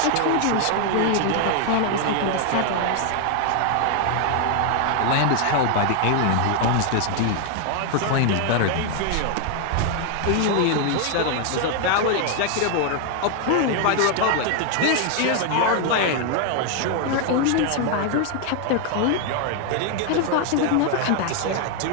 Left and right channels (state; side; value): different; both; correlation 0.00